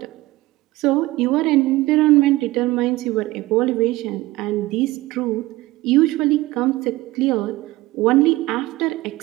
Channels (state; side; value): quieter; left; 18.6 dB